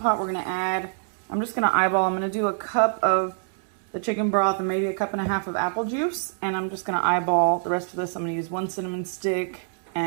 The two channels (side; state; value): left; silent; digital silence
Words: We're going to add, I'm just going to eyeball, I'm going to do a cup of the chicken broth and maybe a cup and a half of apple juice, and I'm just going to eyeball the rest of this. I'm going to use 1 cinnamon stick